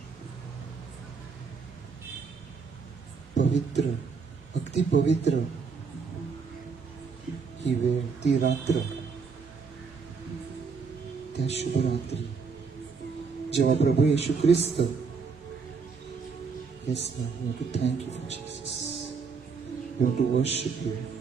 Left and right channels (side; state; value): left; quieter; 5.2 dB